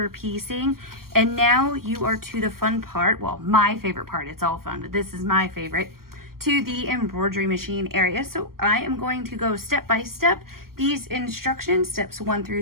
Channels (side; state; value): left; late; 0.93 ms